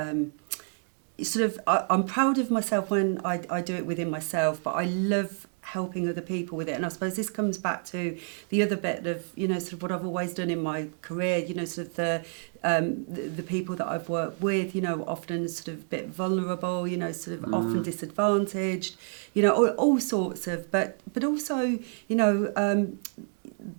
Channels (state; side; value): silent; left; 56 dB below the other